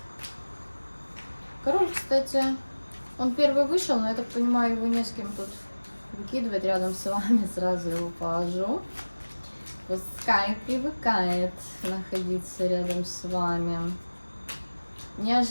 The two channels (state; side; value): inverted; both; correlation -1.00